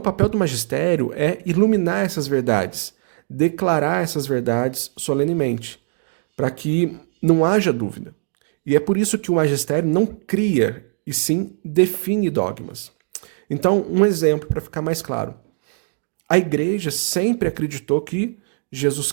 papel do magistério é iluminar essas verdades, declarar essas verdades solenemente, para que não haja dúvida. E é por isso que o magistério não cria, e sim define dogmas. Então, um exemplo para ficar mais claro. A Igreja sempre acreditou que Jesus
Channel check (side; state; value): left; silent; 61 dB below the other